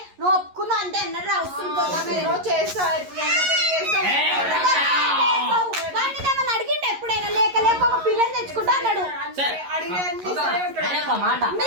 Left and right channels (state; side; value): late; left; 11 ms